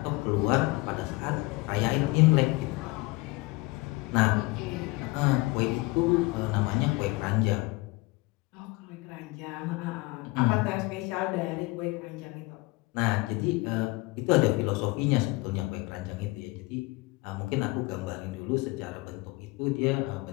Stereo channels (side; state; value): right; quieter; 23.0 dB